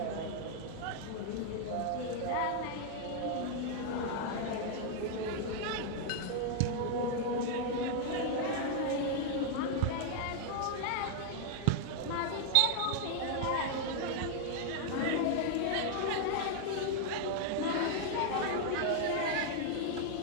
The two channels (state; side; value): different; both; correlation 0.00